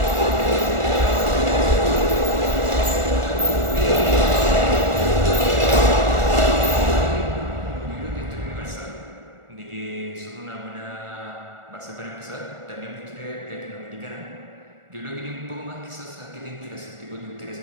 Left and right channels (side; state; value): left; late; 1.4 ms